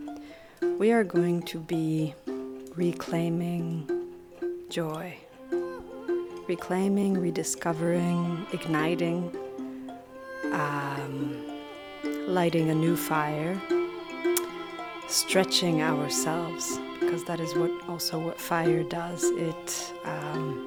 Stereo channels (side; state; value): both; identical; correlation 1.00